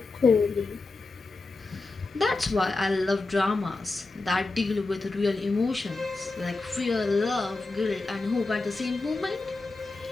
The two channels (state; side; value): quieter; right; 3.5 dB